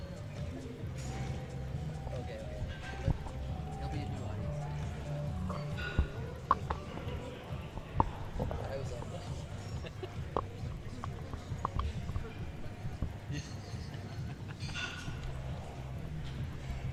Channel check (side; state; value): both; identical; correlation 1.00